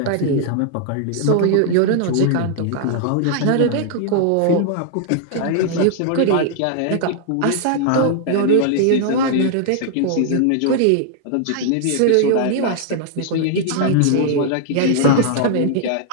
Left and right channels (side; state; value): both; different; correlation 0.00